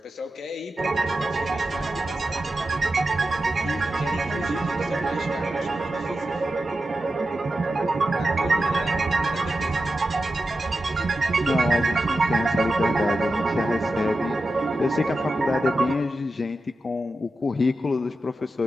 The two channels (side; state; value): both; normal; correlation 0.91